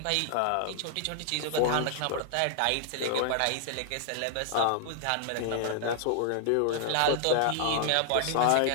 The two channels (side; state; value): both; different; correlation 0.00